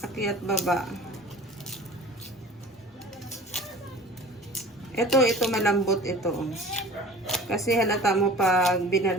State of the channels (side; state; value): both; normal; correlation 0.43